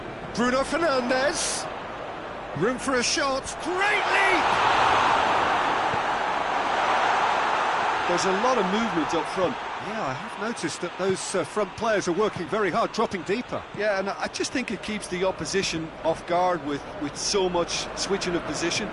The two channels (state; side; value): identical; both; correlation 1.00